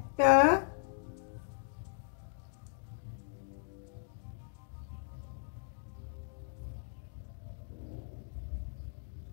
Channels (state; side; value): silent; right; digital silence